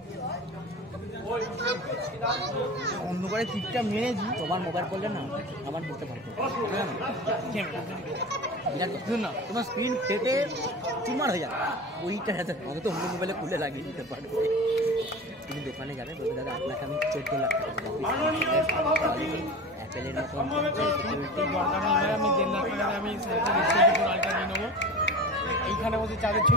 অন্ধকারে টিপটা মেরেছি। তোমার মোবাইল করলে না আমার বুঝতে পারতো না তোমার স্ক্রিন ফেটে চুমার হয়ে যাবে ওইটা অন্তত অন্য মোবাইলে খুলে লাগিয়ে দিতে পারবে। তুমি দোকানে যাবে বলবে দাদা আপনাকে আমি 14 লাখ টাকা অ্যাপেলের মতন সিকিউরিটি দরকার নেই ভাই, আমি 1.5 লাখ টাকাতে আমি আলটা নিয়ে নেবো, এইখানে বসে চাঁদের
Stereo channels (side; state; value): both; normal; correlation 0.33